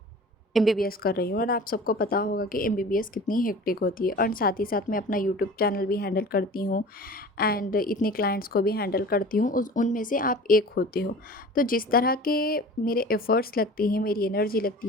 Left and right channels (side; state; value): both; normal; correlation 0.40